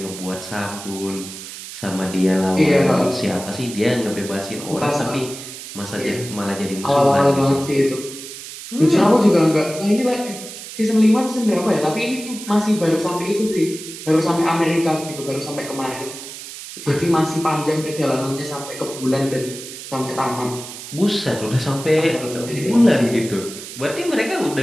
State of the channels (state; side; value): noise; right; hiss, 12 dB below the sound